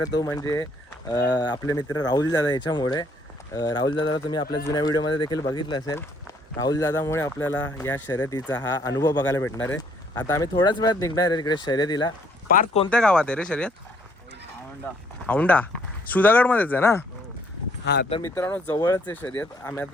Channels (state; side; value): normal; both; correlation 0.65